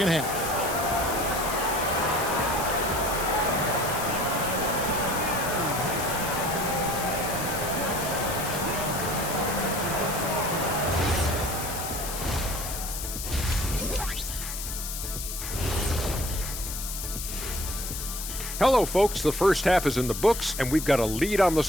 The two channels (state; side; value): noise; left; hiss, 6 dB below the sound